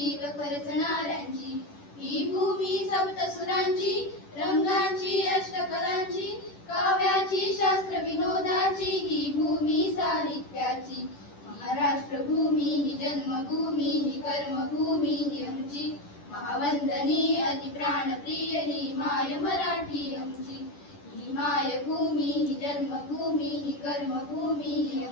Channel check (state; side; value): late; right; 10 ms